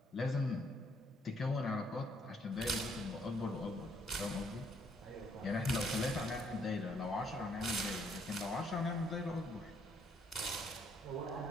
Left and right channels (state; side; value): normal; both; correlation 0.69